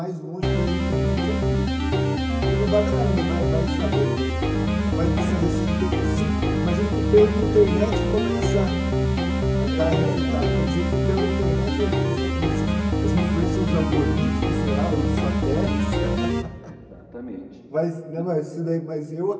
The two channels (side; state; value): both; identical; correlation 1.00